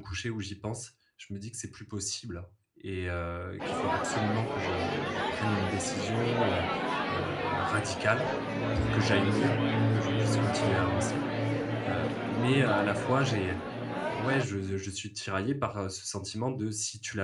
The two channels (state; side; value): identical; both; correlation 1.00